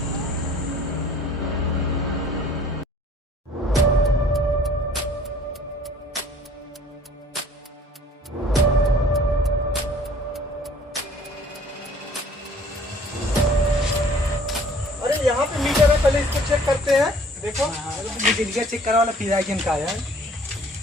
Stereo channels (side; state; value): both; normal; correlation 0.53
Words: अरे यहाँ पे मीटर है, पहले इसको चेक करते हैं। देखो बिजली चेक करा वाला पिरागिन का है,